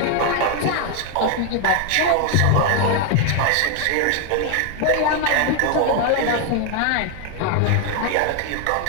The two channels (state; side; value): different; both; correlation 0.00